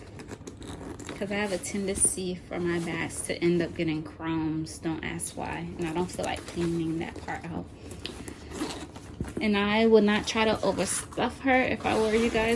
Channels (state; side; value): identical; both; correlation 1.00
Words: because I have a tendency for my bags to end up getting crumbs. Don't ask why. And I don't feel like cleaning that part out. And I would not try to overstuff her if I were you